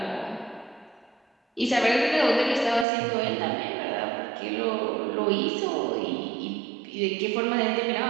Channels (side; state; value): left; drops out; at 2.9 s